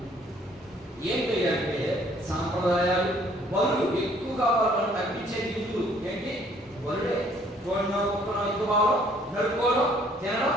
ఏం చేయాలంటే సాంప్రదాయాలు, బరువు ఎక్కువగా వాళ్ళని తగ్గించే నిధులు ఏంటి? బరుడే. భావం నడుపుకోవడం, తినడం,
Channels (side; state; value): both; normal; correlation 0.61